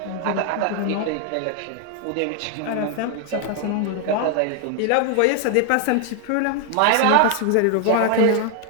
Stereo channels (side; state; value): both; different; correlation 0.00